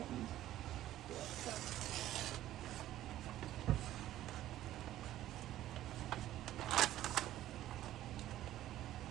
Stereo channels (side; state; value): left; quieter; 13.6 dB